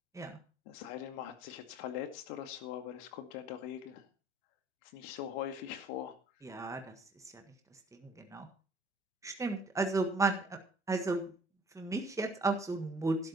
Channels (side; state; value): both; normal; correlation 0.56